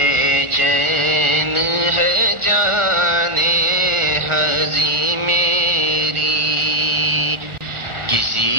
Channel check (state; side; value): late; left; 1.4 ms